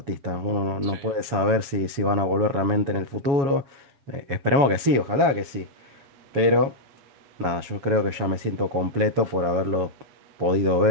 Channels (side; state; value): left; late; 7.3 ms